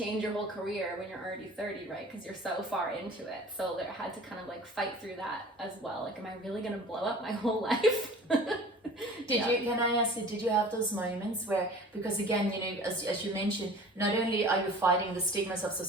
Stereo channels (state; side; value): normal; both; correlation 0.44